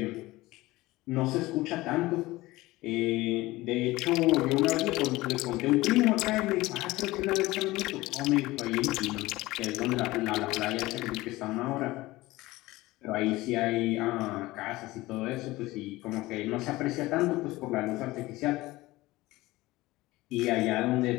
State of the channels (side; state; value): right; quieter; 19.1 dB